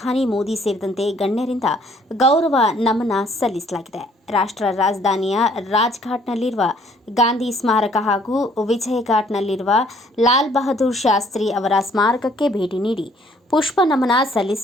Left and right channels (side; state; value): both; normal; correlation 0.62